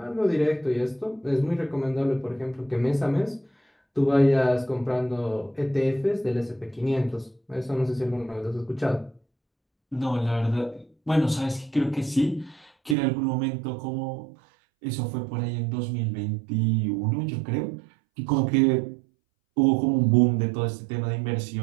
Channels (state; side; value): drops out; left; at 13.0 s